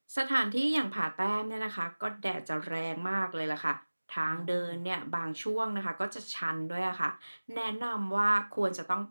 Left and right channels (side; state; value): both; inverted; correlation -1.00